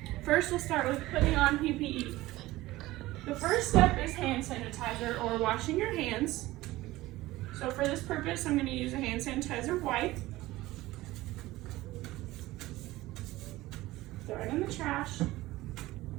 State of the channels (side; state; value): left; quieter; 17.8 dB